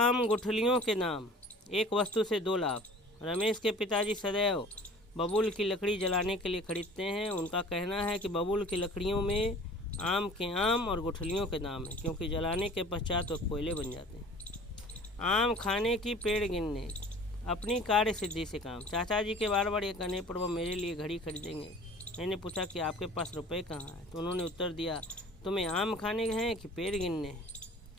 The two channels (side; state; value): both; normal; correlation 0.46